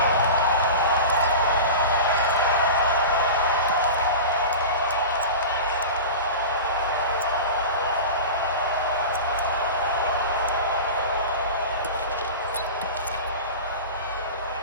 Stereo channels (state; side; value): inverted; both; correlation -0.30